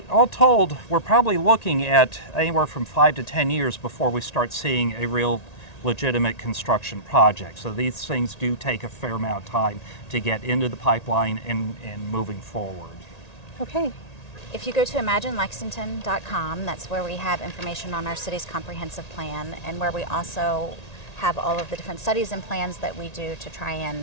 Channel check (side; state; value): right; late; 1.8 ms